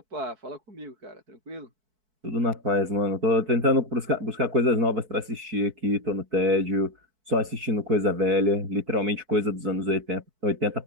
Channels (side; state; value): left; late; 4.6 ms